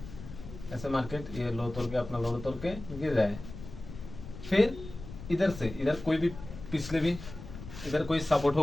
ऐसे मार्केट ये लो तोड़ के अपना लो तोड़ के गिर रहा है। फिर इधर कोई भी पिछले भी इधर कोई सपोर्ट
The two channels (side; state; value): left; noise; rumble, 13 dB below the sound